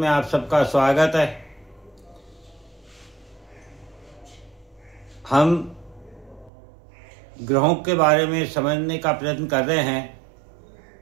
आप सबका स्वागत है। हम ग्रहों के बारे में समझने का प्रयत्न कर रहे हैं,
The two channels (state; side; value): drops out; left; at 6.5 s